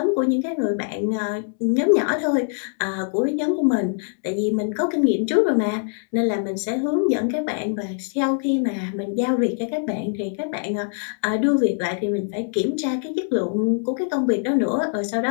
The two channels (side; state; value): right; silent; digital silence